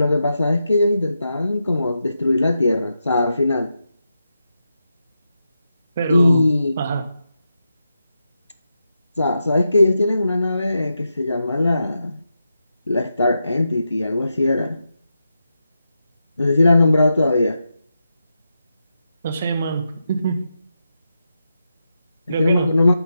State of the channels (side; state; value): both; inverted; correlation -0.87